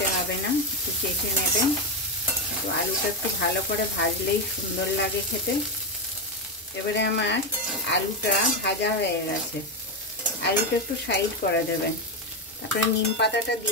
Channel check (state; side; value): normal; both; correlation 0.09